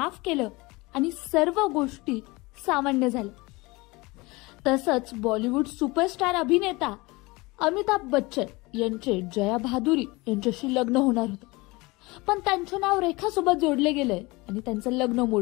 केलं आणि सर्व गोष्टी सामान्य झाल्या. तसंच बॉलिवूड सुपरस्टार अभिनेता अमिताभ बच्चन यांचे जया भादुरी यांच्याशी लग्न होणार होते. पण त्यांचं नाव रेखा सोबत जोडले गेलंय आणि त्यांचं लग्न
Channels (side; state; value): right; quieter; 23.5 dB